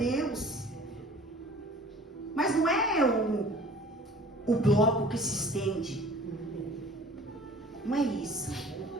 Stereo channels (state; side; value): normal; both; correlation 0.48